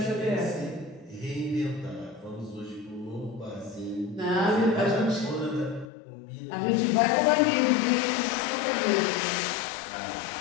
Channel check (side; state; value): right; drops out; at 5.9 s